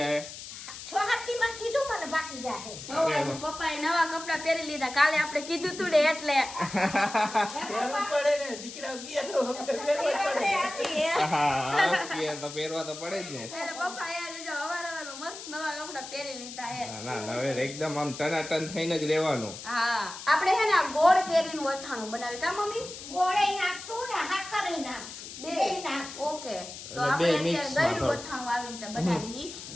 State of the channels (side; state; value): left; noise; hiss, 12 dB below the sound